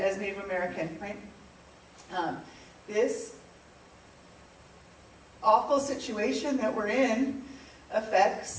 Native American, right? This awful situation that we're in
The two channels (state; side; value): identical; both; correlation 1.00